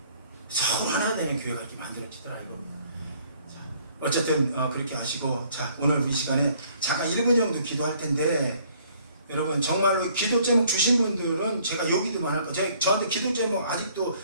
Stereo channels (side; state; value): both; inverted; correlation -0.61